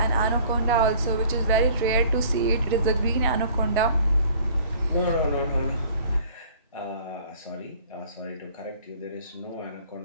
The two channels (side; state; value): both; inverted; correlation -0.53